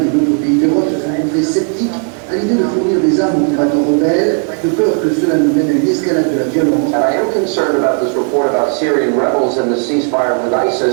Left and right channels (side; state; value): left; quieter; 38.8 dB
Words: et d'autres pays d'Europe se sont montrés sceptiques à l'idée de fournir des armes aux combattants rebelles, de peur que cela nous mène à une escalade de la violence. And I am concerned about this report about Syrian rebels and the ceasefire with